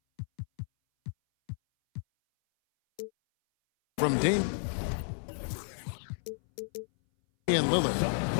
From Damian Lillard.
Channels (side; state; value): right; silent; 57 dB below the other